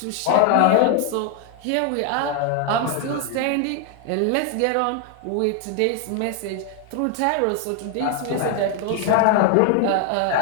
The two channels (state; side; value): different; both; correlation 0.00